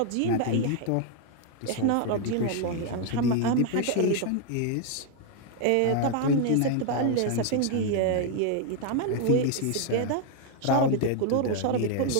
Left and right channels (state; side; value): different; both; correlation 0.01